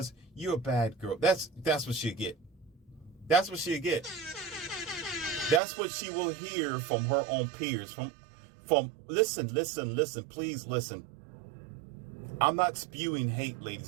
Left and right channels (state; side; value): drops out; left; at 5.6 s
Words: you're a bad girl. That's what she'll get. That's what she'll get. That's what she will hear from her own peers, from listen, please listen. I'm not spewing hate,